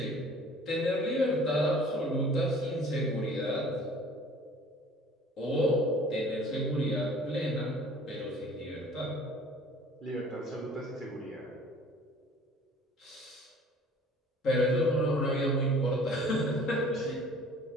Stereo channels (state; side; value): normal; both; correlation 0.50